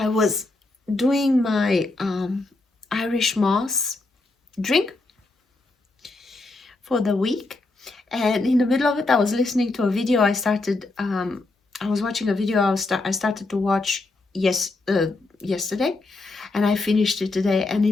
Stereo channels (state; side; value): quieter; right; 3.2 dB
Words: was doing my Irish moss drink for the week, and in the middle of it I was listening to a video. I was watching a video I started to watch yesterday, and I finished it today. And